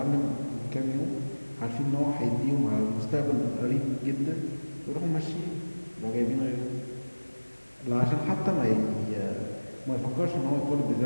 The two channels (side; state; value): both; inverted; correlation -1.00